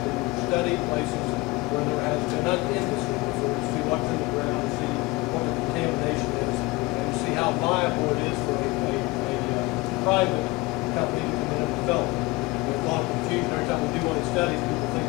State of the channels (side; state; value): right; quieter; 22.2 dB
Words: study places where there has been an industry before, to see what's in the ground, see what the contamination is, and see how viable it is for a private company to come in and develop it. There's a lot of confusion every time we do one of these studies. People think